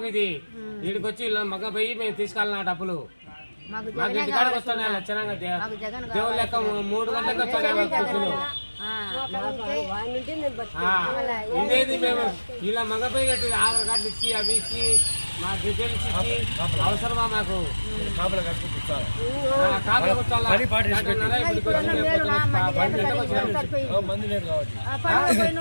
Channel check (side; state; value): both; inverted; correlation -1.00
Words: ఇది. వీడికి వచ్చి మగ పోయి మేము తీసుకెళ్ళిన డబ్బులు మాకు ఇంటికాడికి వస్తాను. లక్షణంగా దేవుడు లెక్క 3 గంటలకు వస్తాను. ఇదేది మేము ఇలా మగపోయినట్టు ఆధార్ కార్డు ఇచ్చి అవి ఇచ్చి మా డీటెయిల్స్ ఇచ్చి అవసరమా మాకు? కాపలా కట్టుకుంటారు.